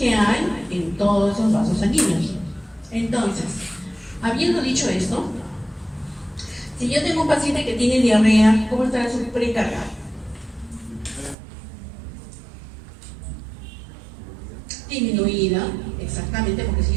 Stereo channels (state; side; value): drops out; left; at 11.4 s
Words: hay en todos esos vasos sanguíneos. Entonces, habiendo dicho esto, si yo tengo un paciente que tiene diarrea, ¿cómo estará su precarga? Disminuida, exactamente, porque si